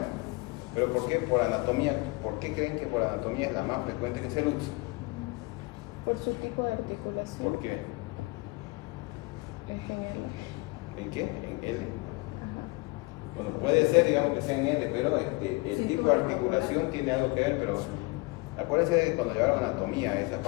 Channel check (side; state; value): right; quieter; 25.8 dB